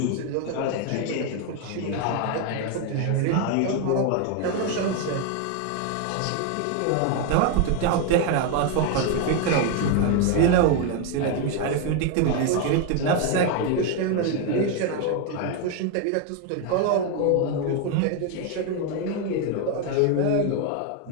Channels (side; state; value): both; different; correlation 0.01